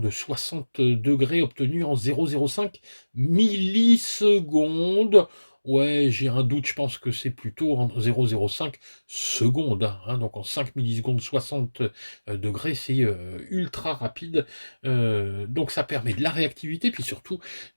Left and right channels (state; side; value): inverted; both; correlation -1.00